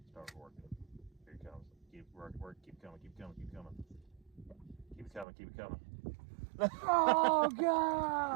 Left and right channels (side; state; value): left; drops out; at 5.2 s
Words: Start working. Here it comes. Keep work. Keep coming. Keep coming. Keep coming. Keep it coming. Keep it coming. Oh